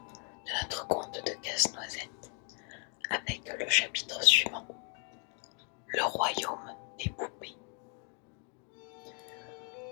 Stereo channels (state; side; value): quieter; right; 39.3 dB